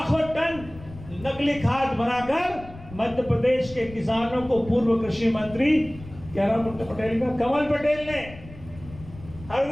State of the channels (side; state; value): left; noise; rumble, 17 dB below the sound